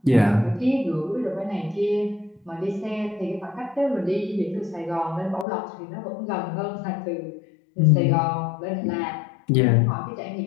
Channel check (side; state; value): right; drops out; at 5.5 s